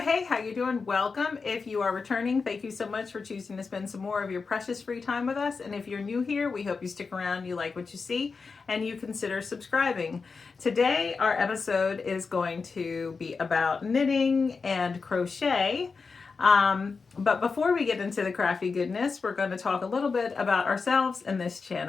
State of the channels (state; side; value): quieter; right; 4.8 dB